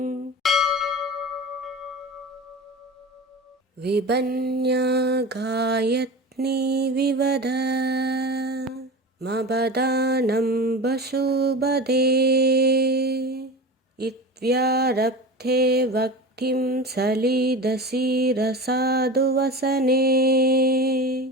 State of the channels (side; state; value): both; normal; correlation 0.30